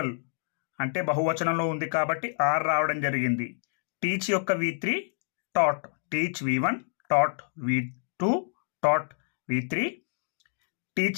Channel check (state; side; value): silent; right; digital silence